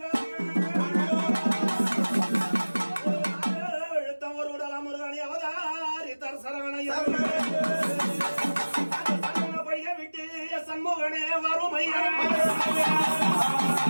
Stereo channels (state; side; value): inverted; both; correlation -1.00